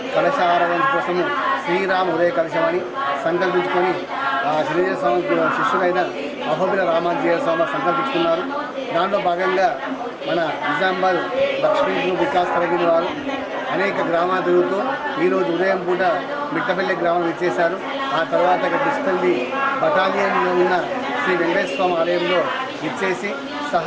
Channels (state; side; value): identical; both; correlation 1.00